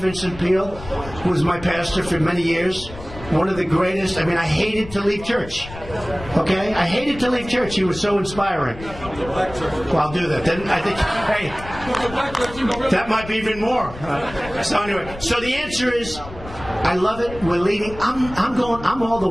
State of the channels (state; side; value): noise; left; rumble, 14 dB below the sound